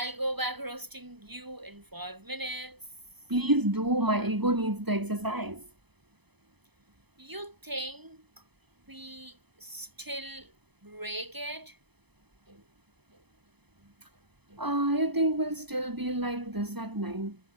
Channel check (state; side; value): late; left; 0.99 ms